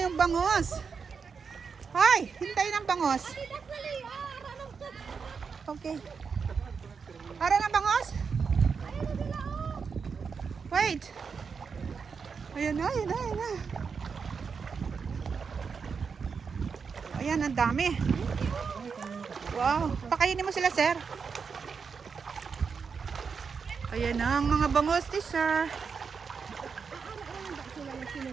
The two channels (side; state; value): left; quieter; 5.7 dB